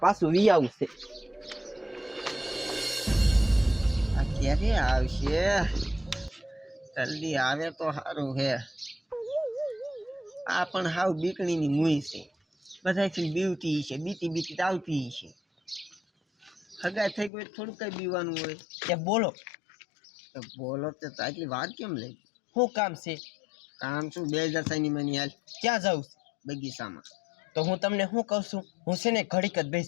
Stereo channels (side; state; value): right; drops out; at 17.3 s